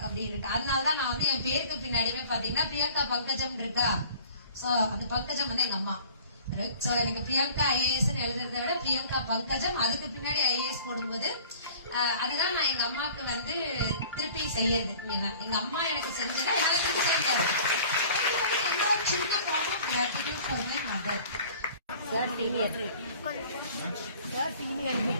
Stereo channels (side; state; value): both; inverted; correlation -0.48